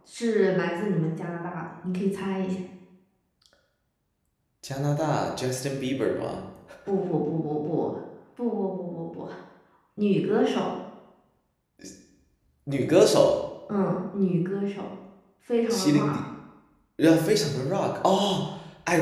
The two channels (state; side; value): identical; both; correlation 1.00